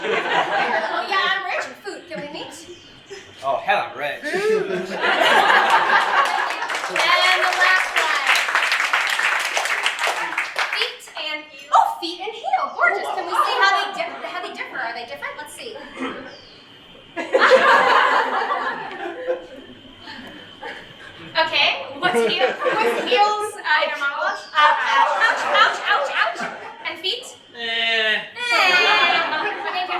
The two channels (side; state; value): both; identical; correlation 1.00